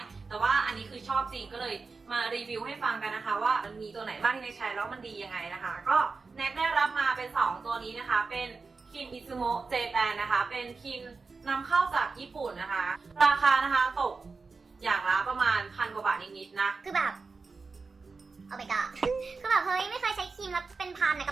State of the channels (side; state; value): left; quieter; 4.3 dB